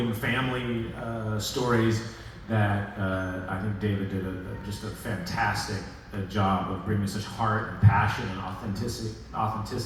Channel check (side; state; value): both; identical; correlation 1.00